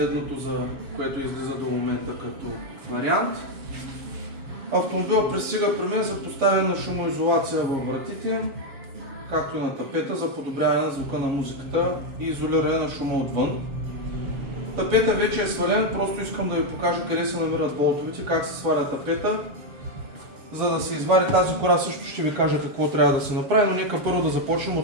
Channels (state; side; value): late; left; 7.1 ms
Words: за което излиза до момента като вариант. Автомобилът пристига при мен за поставяне на шумоизолация във вратите, както и на тапета за подобряване на звука на музиката и изолиране на шума отвън. Тапета вече е свален, просто искам да ви покажа къде се намират болтовете, как се сваля тапета. За да се извади тази кора също ще ви кажа какво трябва да се направи, но нека първо да започнем